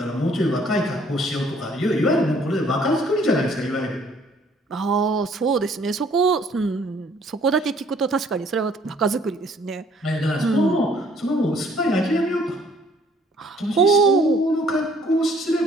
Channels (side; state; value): both; normal; correlation 0.60